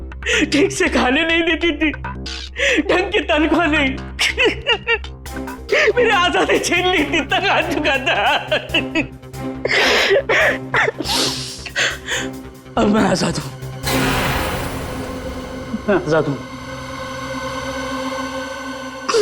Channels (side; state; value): both; identical; correlation 1.00